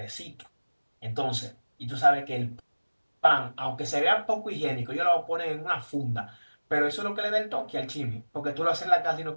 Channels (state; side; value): inverted; both; correlation -1.00